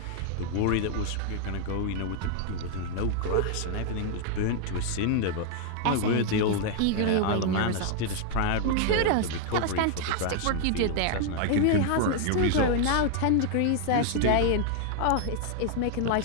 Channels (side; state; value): both; different; correlation 0.00